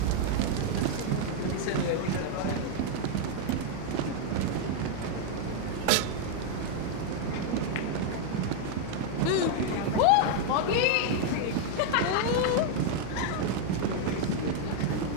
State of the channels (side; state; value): both; different; correlation 0.00